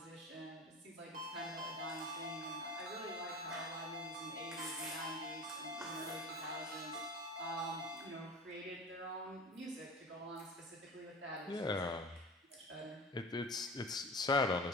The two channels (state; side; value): normal; both; correlation 0.35